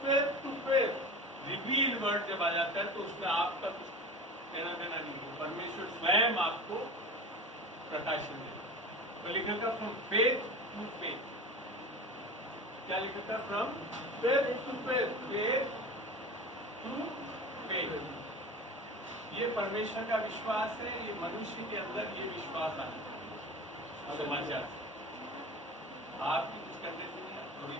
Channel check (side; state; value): both; normal; correlation 0.33